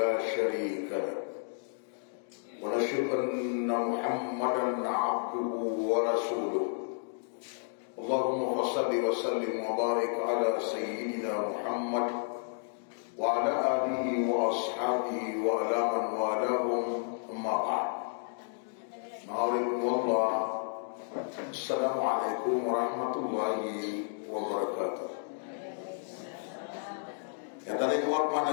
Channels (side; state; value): right; silent; digital silence